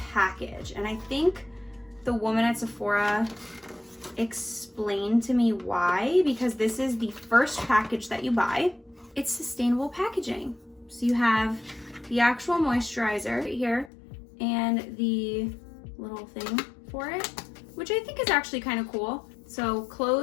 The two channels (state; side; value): drops out; right; at 13.9 s